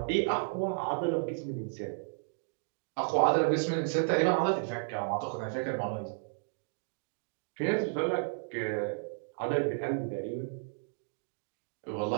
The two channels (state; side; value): silent; left; digital silence